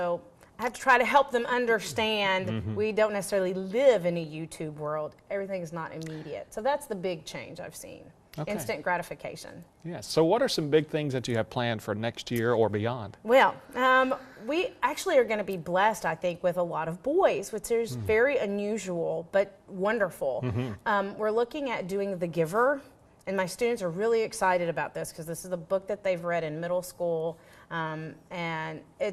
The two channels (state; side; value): identical; both; correlation 1.00